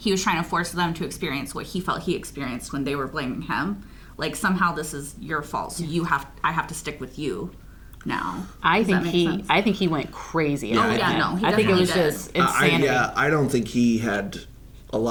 was trying to force them to experience what he felt he experienced when they were blaming him. Like, somehow this is your fault, so I have to stick with you now. I think he went crazy. I think it was just insanity. I don't think he had a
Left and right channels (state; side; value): identical; both; correlation 1.00